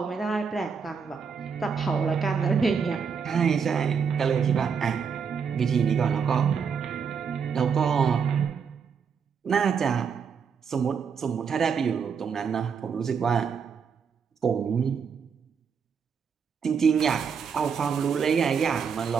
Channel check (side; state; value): left; quieter; 6.4 dB